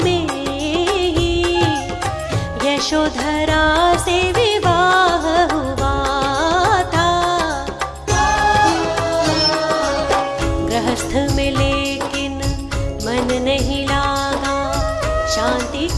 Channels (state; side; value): identical; both; correlation 1.00